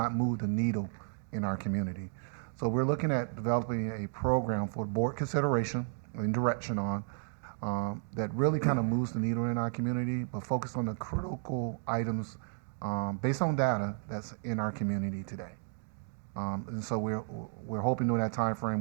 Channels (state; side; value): silent; left; 56 dB below the other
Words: move the needle in our community. So we're looking at developing a program for board consideration and direction on that really kind of moves the needle in our community, but focus on the critical items based on data that's in our community today. And so we're hoping during that time frame